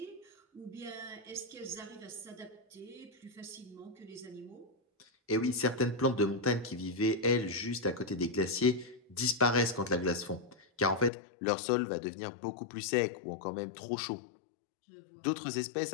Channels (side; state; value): right; drops out; at 11.1 s